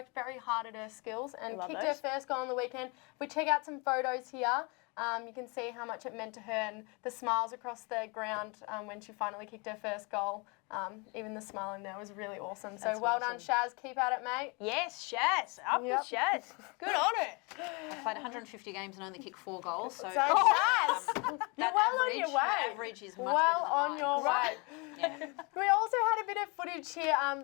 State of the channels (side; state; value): right; quieter; 30.0 dB